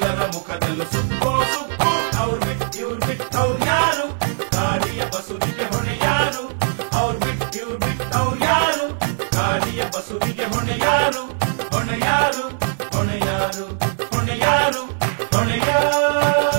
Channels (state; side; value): silent; left; 65 dB below the other